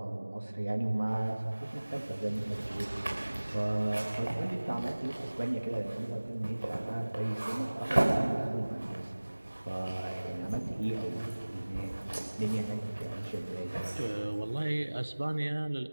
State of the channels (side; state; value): both; inverted; correlation -1.00